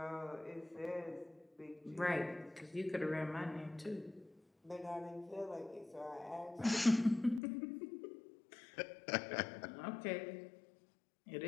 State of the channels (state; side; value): drops out; right; at 7.4 s